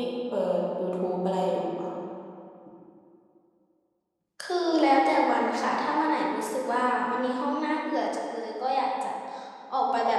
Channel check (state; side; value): identical; both; correlation 1.00